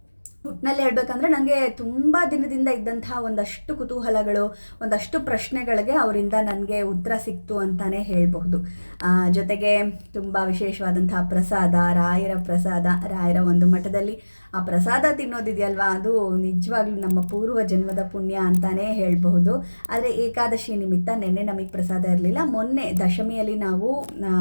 ಒಟ್ಟಿನಲ್ಲಿ ಹೇಳ್ಬೇಕಂದ್ರೆ ನನಗೆ ತುಂಬ ದಿನದಿಂದ ಇದ್ದಂತಹ ಒಂದಷ್ಟು ಕುತೂಹಲಗಳು, ಒಂದಷ್ಟು ಪ್ರಶ್ನೆಗಳಿಗೆ ಅವರಿಂದ ನನಗೆ ಉತ್ತರ ಸಿಕ್ತು ಅಂತಲೇ ಹೇಳಬಹುದು. ಜೊತೆಗೆ ತುಂಬ ವಿಶೇಷವಾದಂತಹ ಪ್ರಸಾದ, ರಾಯರ ಪ್ರಸಾದ, ರಾಯರ ಒಂದು ಮಠದಲ್ಲಿ ಆ ಪ್ರಸಾದ ತಿನ್ನೋದಿದೆಯಲ್ವಾ, ಅದು ನಿಜವಾಗ್ಲೂ ನಮ್ಮ ಪೂರ್ವ ಜನ್ಮದ ಪುಣ್ಯ ಅಂತಲೇ ಹೇಳಬಹುದು. ಆದರೆ ಏಕಾದಶಿ ನಿಮಿತ್ತ ನಿನ್ನೆ ನಮಗೆ ಪ್ರಸಾದ ಇರಲಿಲ್ಲ. ಮೊನ್ನೆ ದಶಮಿಯಲ್ಲಿ ನಾವು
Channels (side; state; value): both; inverted; correlation -1.00